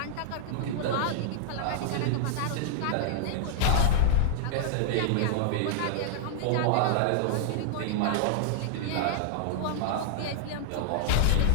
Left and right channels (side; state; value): both; different; correlation -0.01